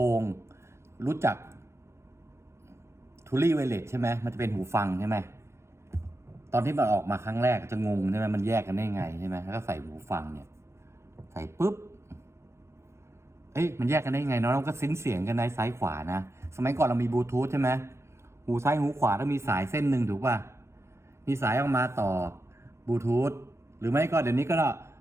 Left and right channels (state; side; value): late; left; 0.13 ms